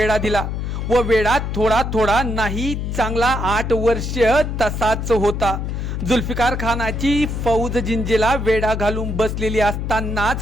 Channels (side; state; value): left; noise; hum, 3 dB below the sound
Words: दिला व वेढा थोडा थोडा नाही चांगला 8 वर्ष तसाच होता. जुल्फिकार खानाची फौज जिंजीला वेढा घालून बसलेली